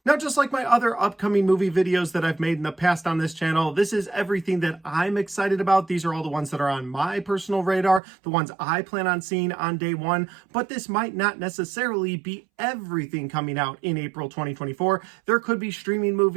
Now, just like my other upcoming movie videos that I've made in the past on this channel, this is everything that I'm excited about. These are all the ones that are on my personal radar, the ones I plan on seeing on day one, but this might not necessarily be everything coming out in April 2024. There could be streaming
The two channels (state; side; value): drops out; left; at 8.0 s